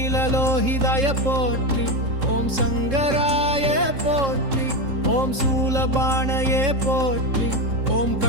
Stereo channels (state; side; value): late; left; 3.7 ms